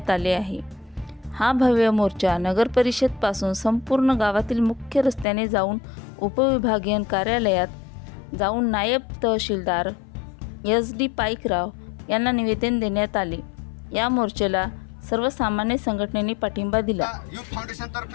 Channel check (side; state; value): right; drops out; at 5.2 s